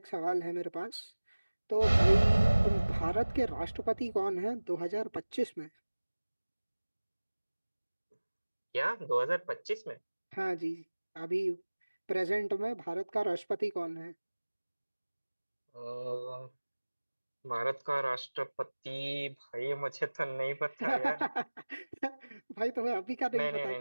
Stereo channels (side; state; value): both; inverted; correlation -1.00